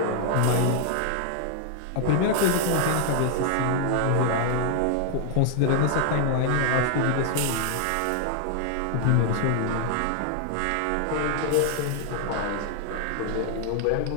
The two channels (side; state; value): both; different; correlation 0.00